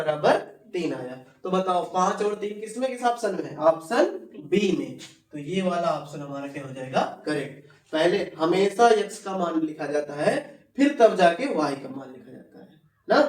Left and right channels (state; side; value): identical; both; correlation 1.00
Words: 3 आया। तो बताओ 5 और 3 किसमें, किस ऑप्शन में है, ऑप्शन बी में। तो ये वाला ऑप्शन हमारा क्या हो जाएगा करेक्ट। पहले हमेशा x का मान लिखा जाता है, फिर तब जाके y का मान लिखा जाता है ना।